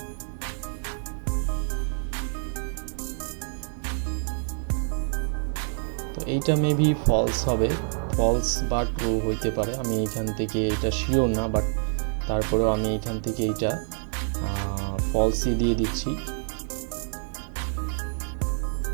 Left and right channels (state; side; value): silent; left; digital silence